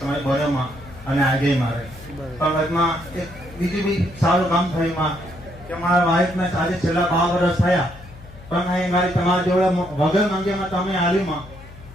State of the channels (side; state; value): left; noise; hum, 18 dB below the sound